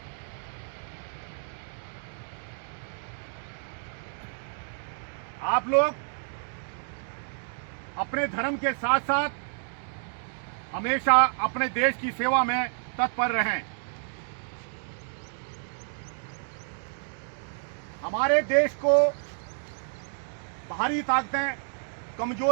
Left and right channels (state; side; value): silent; left; digital silence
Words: आप लोग अपने धर्म के साथ साथ हमेशा अपने देश की सेवा में तत्पर रहें। हमारे देश को बाहरी ताकतें